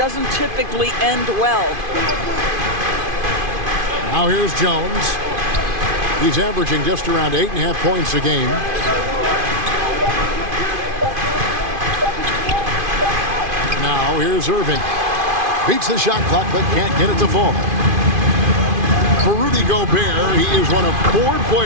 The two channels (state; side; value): late; left; 2.5 ms